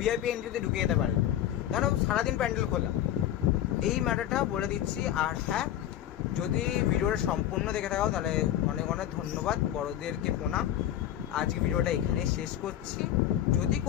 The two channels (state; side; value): quieter; right; 11.9 dB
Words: ভিআইপি এন্ট্রিতে ঢুকে যেতে পারে, কেন সারাদিন প্যান্ডেল খোলা। এই ম্যাটারটা বলে দিচ্ছি। আর হ্যাঁ, যদি ভিডিওটা সম্পূর্ণ দেখে থাকো তাহলে অনেক অনেক ধন্যবাদ, বড়দেরকে প্রণাম। আজকে ভিডিওটা এখানে শেষ করছি। যদি